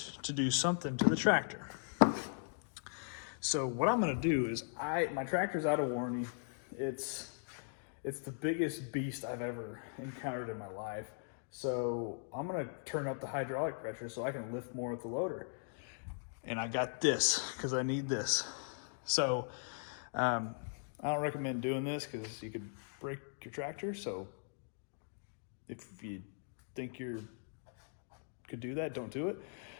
to do something to the tractor. So what I'm gonna do is my tractor's out of warranty. It's the biggest beast I've ever encountered in my life. So I'm gonna turn up the hydraulic pressure so I can lift more with the loader. And I got this because I need this. So I don't recommend doing this because you could break your tractor. So if you think you could do that, don't do it.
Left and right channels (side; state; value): right; silent; digital silence